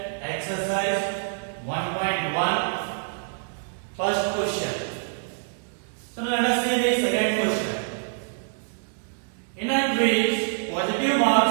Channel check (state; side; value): silent; left; 61 dB below the other